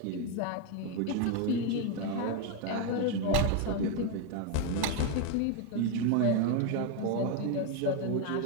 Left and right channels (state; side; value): different; both; correlation 0.01